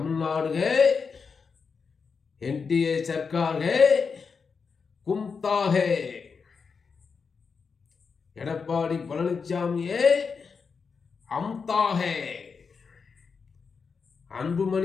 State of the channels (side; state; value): right; quieter; 5.4 dB